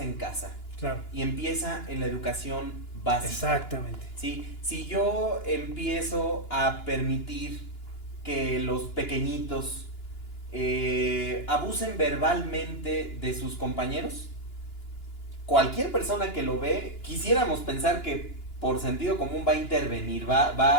en casa. Claro. Y empieza en la educación básica. Exactamente. ¿Sí? Si yo empiezo a permitir que los pequeñitos abusen verbalmente de sus compañeros? Cualquier persona que lo ve, quisiéramos pensar que por sentido común va a intervenir,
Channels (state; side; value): late; right; 2.9 ms